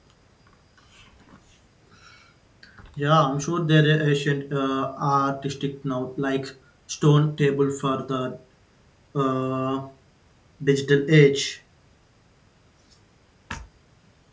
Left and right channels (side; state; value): both; identical; correlation 1.00